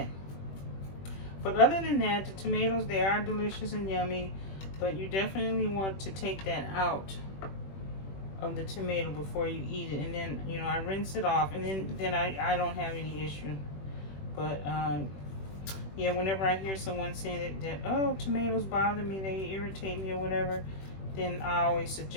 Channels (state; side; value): late; right; 21 ms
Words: But other than that, the tomatoes, they are delicious and yummy, but you definitely want to take that out of the tomato before you eat it. And then, you know, I rinse it off, and then I don't have any issue. But yeah, whenever I hear someone saying that oh, tomatoes bother me, they irritate me or whatever, then I always